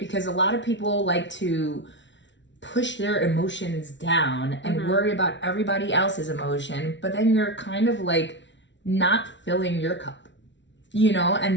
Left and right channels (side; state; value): right; late; 0.53 ms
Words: a lot of people like to push their emotions down and worry about everybody else's emotion, but then you're kind of like not filling your cup, you know,